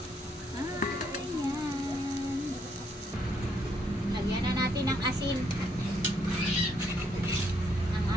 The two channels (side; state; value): both; normal; correlation 0.72